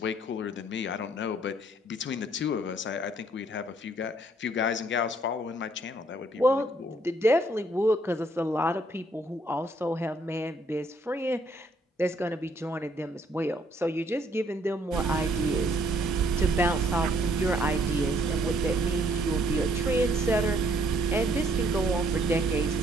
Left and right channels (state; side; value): normal; both; correlation 0.66